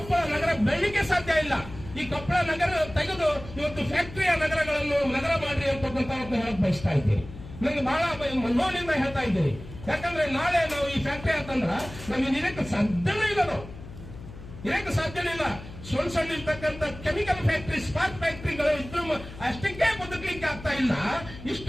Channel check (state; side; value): noise; left; hum, 14 dB below the sound